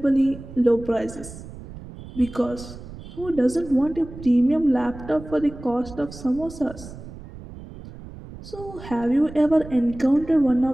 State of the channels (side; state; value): right; noise; rumble, 15 dB below the sound